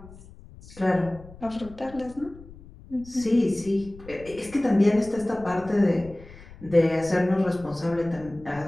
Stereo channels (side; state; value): left; noise; rumble, 19 dB below the sound